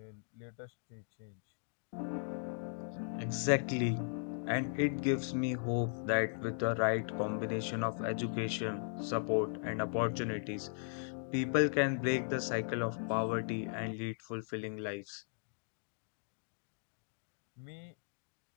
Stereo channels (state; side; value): silent; right; digital silence